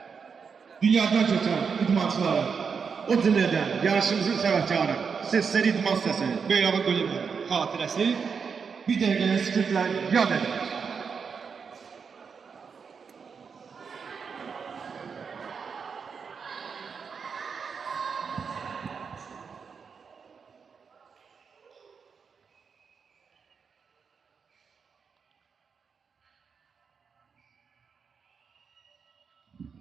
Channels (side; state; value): left; quieter; 5.9 dB